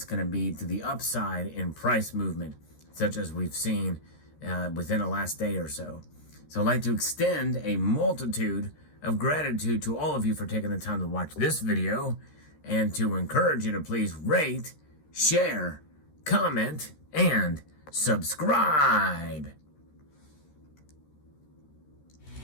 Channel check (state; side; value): late; right; 13 ms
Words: going to be to the upside in price movement, such as we've seen within the last day or so. So I'd like to extend a multitude of gratitude to all of you for taking the time to watch this video, and to encourage you to please rate, share, comment, and subscribe.